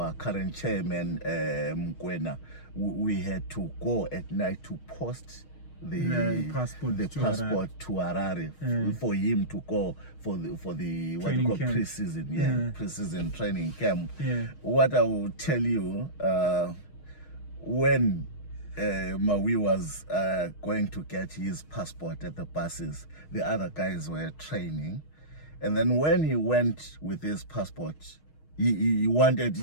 current chairman, Mkwena, we had to go at night to post the passport to Harare for him to go for the what you call pre-season, pre-season training camp. What I will tell you, when Maui was going to get his passport at the buses, the other guys were training, and then when he went with his passport, he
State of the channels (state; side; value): late; right; 6.4 ms